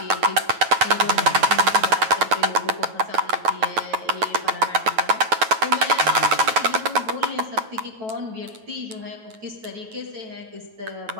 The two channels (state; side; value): late; left; 9.2 ms